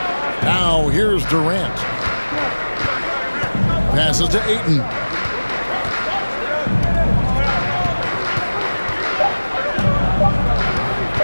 Now here's Durant. Passes to Ayton.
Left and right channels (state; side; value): inverted; both; correlation -1.00